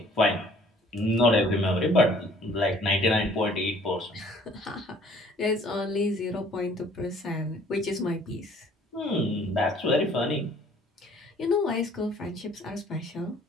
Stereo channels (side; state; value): both; normal; correlation 0.56